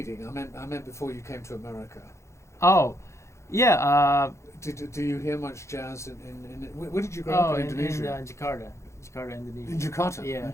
I meant before you came to America. Oh, yeah. Do you hear much jazz in where did you grow up in Indonesia? In Jakarta, Indonesia. In Jakarta. Yeah.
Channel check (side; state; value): right; late; 0.14 ms